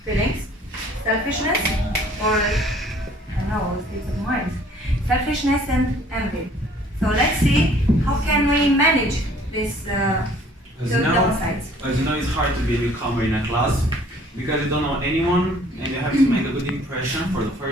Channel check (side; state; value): both; normal; correlation 0.56